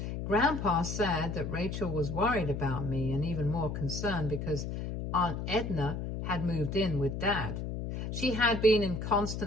Grandpa said that Rachel was worried about me and even more concerned because Aunt Edna had moved in with Dad. She had been in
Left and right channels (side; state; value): left; noise; hum, 5 dB below the sound